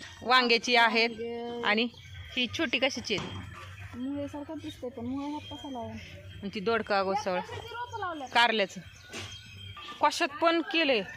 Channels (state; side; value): identical; both; correlation 1.00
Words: वांग्याची आहेत आणि ही छोटी कशाची आहेत? मुळेसारखं दिसतंय पण मुळे हात कसा लावून ती दोडका गोसळ कारल्याचं कशात पण केलंय.